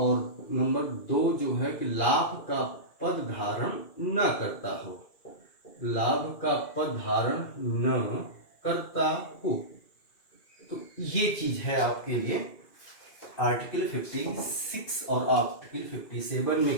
नंबर 2 जो है कि लाभ का पद धारण न करता हो, लाभ का पद धारण न करता हो। तो ये चीज है आपके लिए आर्टिकल 56 और आर्टिकल 57 में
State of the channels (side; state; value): right; late; 2.4 ms